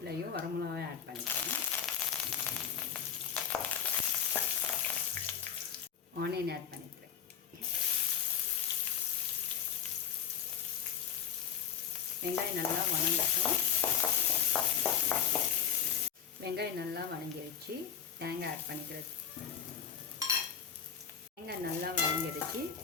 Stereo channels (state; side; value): quieter; right; 8.5 dB